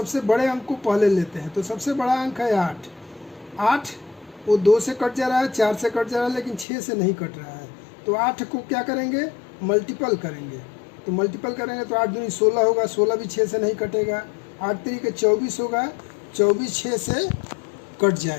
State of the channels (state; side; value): drops out; right; at 6.7 s